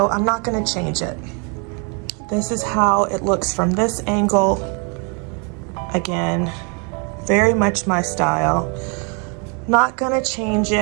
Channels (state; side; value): quieter; left; 35.7 dB